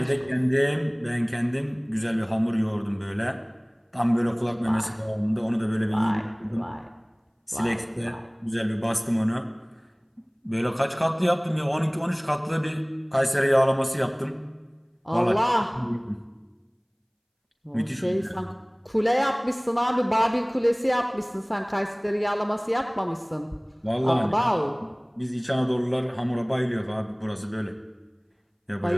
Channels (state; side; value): identical; both; correlation 1.00